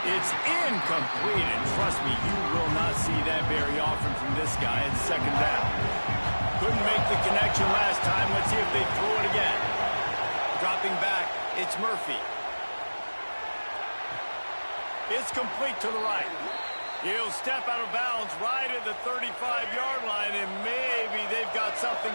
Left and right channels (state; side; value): inverted; both; correlation -1.00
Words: It's incomplete, and trust me, you will not see that very often from this guy at 2nd down. Couldn't make the connection last time. Let's see if they throw it again. Dropping back, it's Murphy. It's complete to the right. He'll step out of bounds right at the 35-yard line, and maybe they've got something